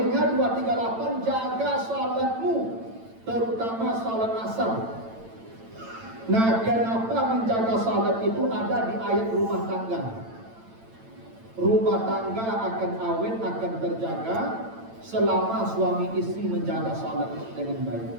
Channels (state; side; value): late; left; 8.9 ms